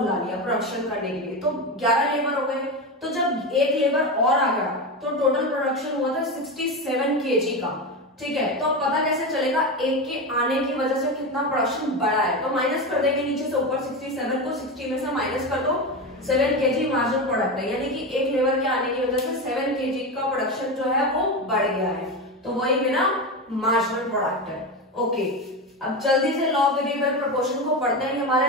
लिया प्रोडक्शन करने के लिए, तो 11 लेबर हो गए। तो जब एक लेबर और आ गया तो टोटल प्रोडक्शन हुआ था 67 kg का, ठीक है। तो अब पता कैसे चलेगा, एक के आने की वजह से कितना प्रोडक्शन बढ़ा है। तो माइनस कर देंगे नीचे से ऊपर, 67 को 60 में से माइनस कर दो, 7 kg मार्जिनल प्रोडक्ट है, यानी कि एक लेबर के आने की वजह से 7 kg का प्रोडक्शन जो है वो बढ़ गया है। तो वही मेरा मार्जिनल प्रोडक्ट है। ओके, अब जल्दी से लॉ ऑफ वेरिएबल प्रोपोर्शन को पढ़ते हैं।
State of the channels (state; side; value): normal; both; correlation 0.18